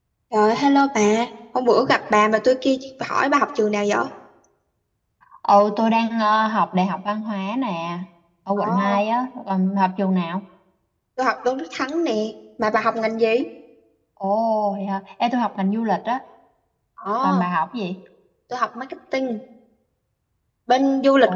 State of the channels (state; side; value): identical; both; correlation 1.00